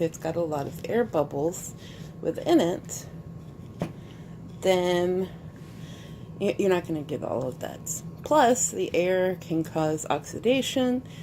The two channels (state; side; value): identical; both; correlation 1.00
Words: got a lot of air bubbles within it, then you're not going to get all of that. Plus, the air can cause oxidation